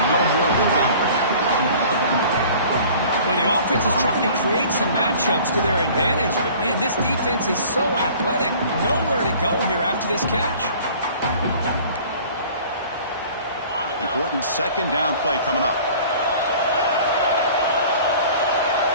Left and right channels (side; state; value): both; inverted; correlation -0.48